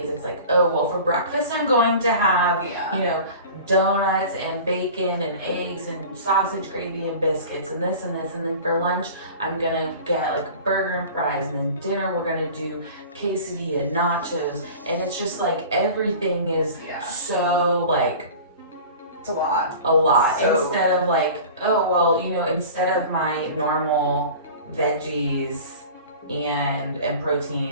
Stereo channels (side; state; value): both; inverted; correlation -0.39